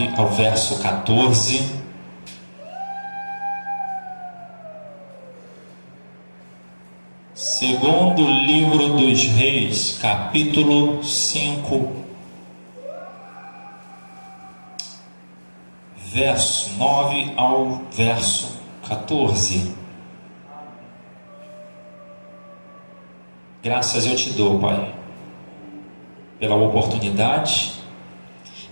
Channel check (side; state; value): both; inverted; correlation -1.00